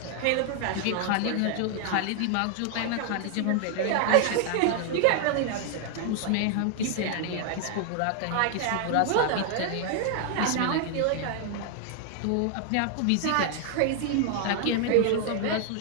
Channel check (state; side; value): different; both; correlation 0.00